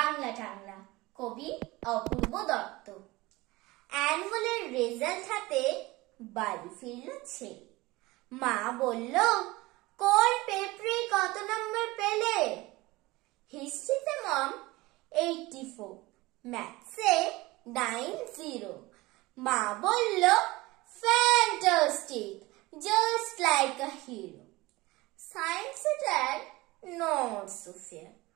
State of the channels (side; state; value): left; quieter; 20.9 dB